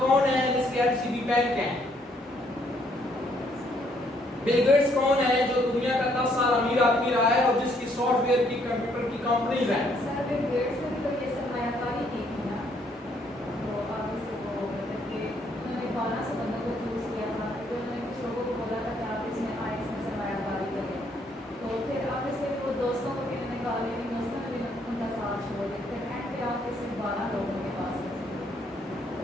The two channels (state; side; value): normal; both; correlation 0.69